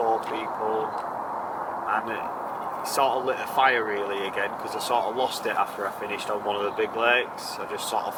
people, and it sort of lit a fire really again, because I sort of lost it after I finished on one of the big lakes. I just sort of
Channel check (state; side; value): identical; both; correlation 1.00